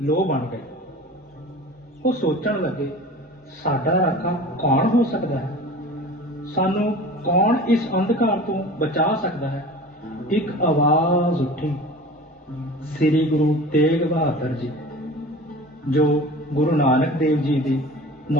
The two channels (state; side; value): normal; both; correlation 0.38